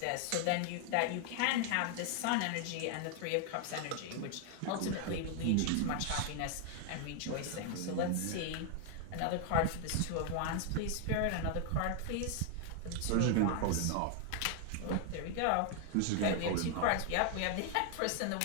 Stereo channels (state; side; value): different; both; correlation 0.00